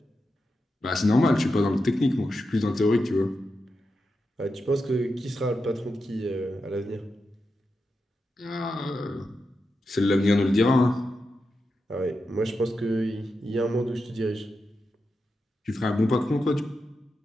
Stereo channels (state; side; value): normal; both; correlation 0.88